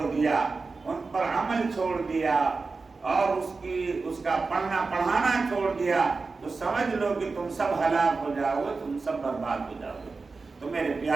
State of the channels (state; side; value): quieter; left; 4.1 dB